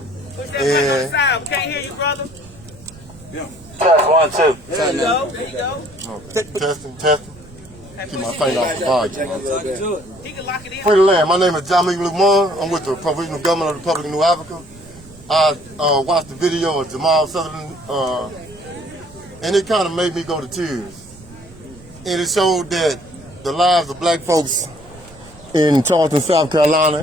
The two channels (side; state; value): right; noise; rumble, 21 dB below the sound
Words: Push that mic outside. We can't hear you, brother. Test 1, 2. There you go. There you go. Okay. Testing. Keep my finger off the volume. He can lock it in. Free the land. My name is Jamal. I'm with the Provisional Government of the Republic of New Africa. I watched the video of Jamal Sutherland, and it kind of made me go to tears. And it showed that the lives of black folks in Charleston, South Carolina,